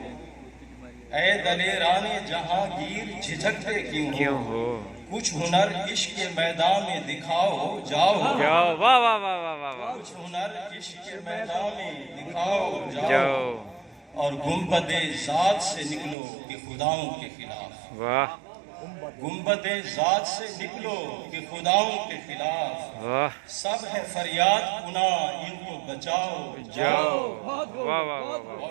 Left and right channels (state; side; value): drops out; left; at 16.2 s